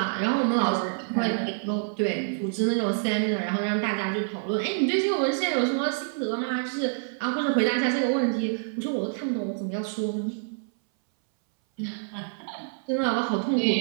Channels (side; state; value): left; silent; 60 dB below the other